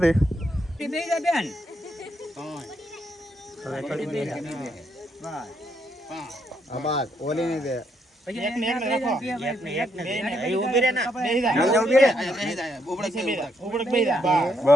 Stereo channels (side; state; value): both; normal; correlation 0.76